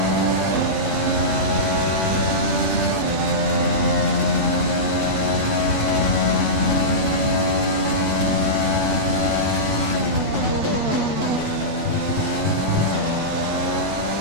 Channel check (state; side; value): late; left; 3.4 ms